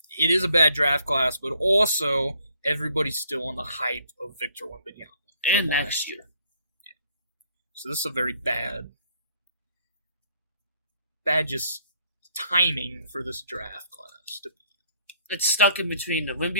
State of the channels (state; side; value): inverted; both; correlation -0.64